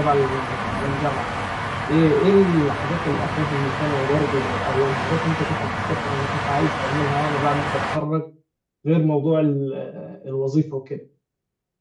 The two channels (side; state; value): both; identical; correlation 1.00